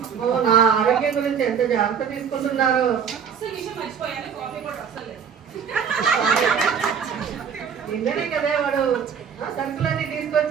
నా ఆరోగ్యం గురించి ఎంత జాగ్రత్త తీసుకుంటున్నారు. అసలు విషయం మర్చిపోయాను, కాఫీ కూడా అసలు లేదు. నిన్ననే కదా వాడు సరుకులన్నీ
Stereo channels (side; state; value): left; quieter; 7.2 dB